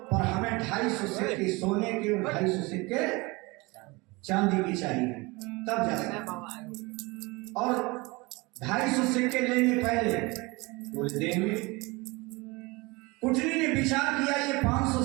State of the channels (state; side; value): quieter; left; 24.8 dB